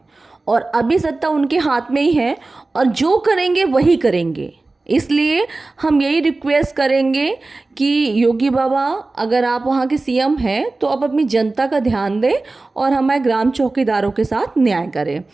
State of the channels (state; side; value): quieter; left; 3.3 dB